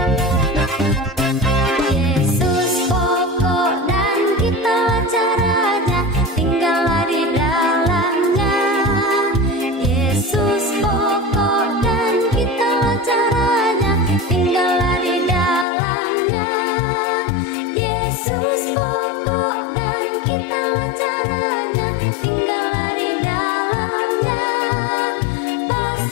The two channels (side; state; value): right; drops out; at 15.7 s